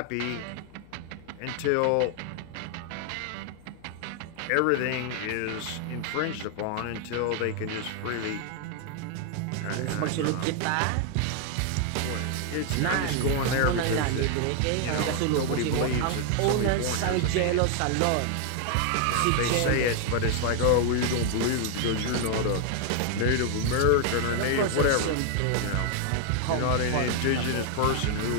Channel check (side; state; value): both; different; correlation 0.00